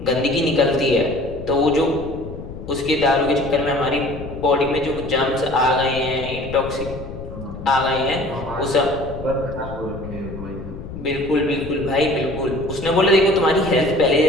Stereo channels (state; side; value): noise; left; rumble, 11 dB below the sound